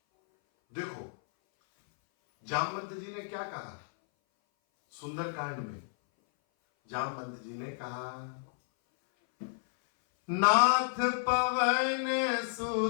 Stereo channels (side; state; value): right; silent; 57 dB below the other